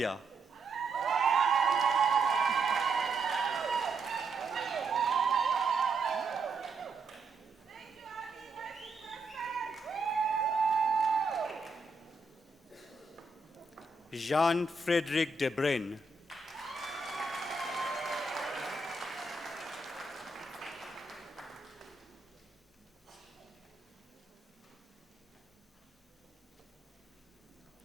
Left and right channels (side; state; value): left; quieter; 3.6 dB